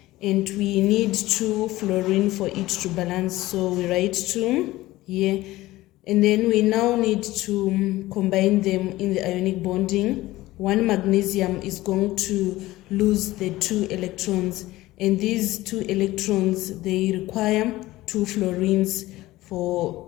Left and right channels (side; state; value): right; quieter; 17.5 dB